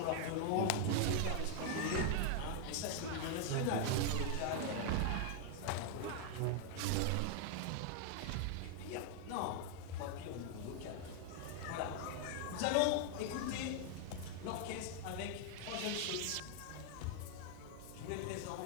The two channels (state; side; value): different; both; correlation 0.00